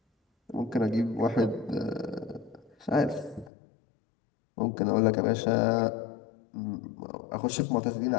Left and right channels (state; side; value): drops out; right; at 3.5 s